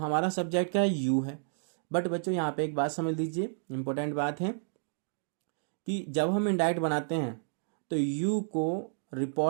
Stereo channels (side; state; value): left; silent; digital silence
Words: सब्जेक्ट क्या है, यू है। बट बच्चों यहाँ पे एक बात समझ लीजिए, इंपॉर्टेंट बात है कि जब हम इंडायरेक्ट बनाते हैं तो यू को